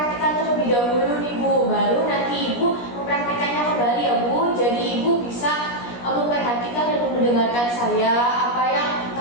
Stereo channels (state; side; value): late; right; 17 ms